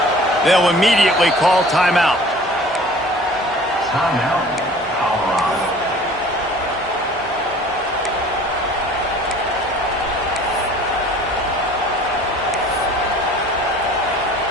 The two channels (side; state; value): both; normal; correlation 0.47